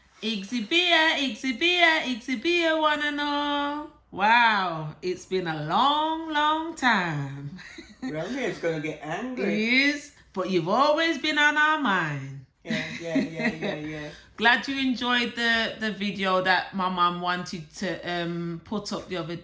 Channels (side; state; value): both; identical; correlation 1.00